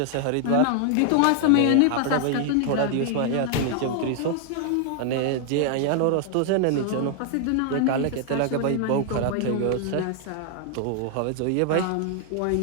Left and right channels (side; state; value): both; different; correlation 0.00